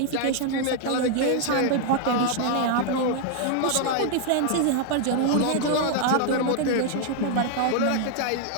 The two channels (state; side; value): different; both; correlation 0.00